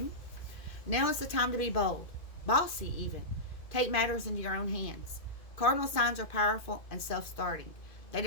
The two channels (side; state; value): right; late; 2.4 ms